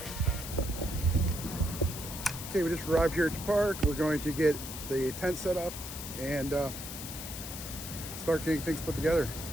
Okay, we just arrived here at the park. We're going to get the tent set up and start getting things put together.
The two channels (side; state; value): left; noise; hiss, 9 dB below the sound